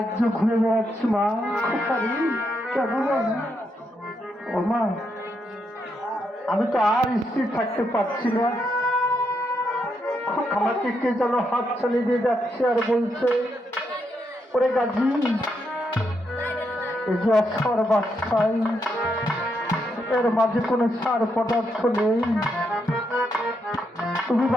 ঘুরে বেড়াচ্ছি মা, কেন ও মা, আমি তো আর স্থির থাকতে পারছি না। আমাকে কে যেন হাত ছাড়িয়ে দিয়ে যাচ্ছে আর বলছে, ওরে গাজী, এই যে অক্ষর বাচ্চাই, এর মাঝে কোনো সার পদার্থ নেই, তুমি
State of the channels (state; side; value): normal; both; correlation 0.80